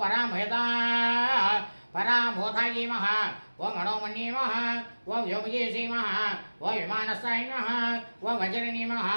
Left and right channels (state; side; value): inverted; both; correlation -1.00